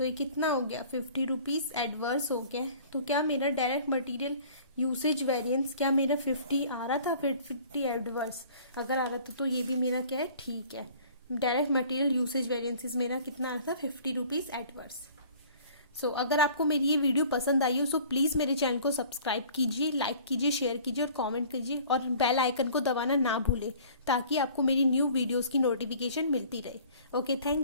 ये कितना हो गया 50 रुपीज़ एडवर्स हो गया। तो क्या मेरा डायरेक्ट मटेरियल यूसेज वेरिएंस क्या मेरा 50 आ रहा था, फिर 50 एडवर्स अगर आ रहा था तो ये भी मेरा क्या है ठीक है। डायरेक्ट मटेरियल यूसेज वेरिएंसेस मेरा कितना आ रहा था 50 रुपीज़ एडवर्स। सो अगर आपको मेरी ये वीडियो पसंद आई हो सो प्लीज़ मेरे चैनल को सब्सक्राइब कीजिए, लाइक कीजिए, शेयर कीजिए और कमेंट कीजिए, और बेल आइकन को दबाना ना भूलें ताकि आपको मेरी न्यू वीडियोस की नोटिफिकेशन मिलती रहे। Okay,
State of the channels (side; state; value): both; inverted; correlation -0.50